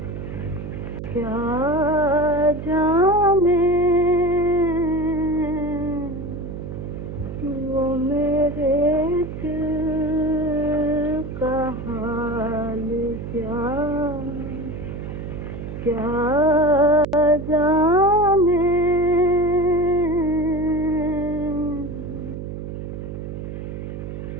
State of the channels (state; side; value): noise; right; hum, 8 dB below the sound